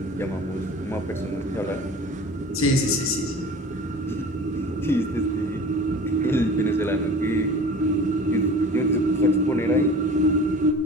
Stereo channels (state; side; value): normal; both; correlation 0.41